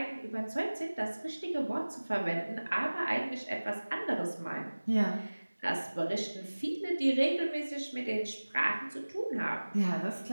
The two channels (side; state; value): both; inverted; correlation -1.00